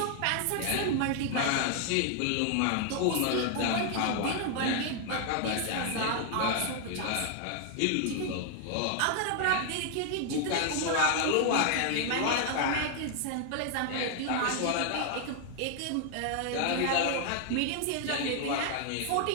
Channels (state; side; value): different; both; correlation 0.00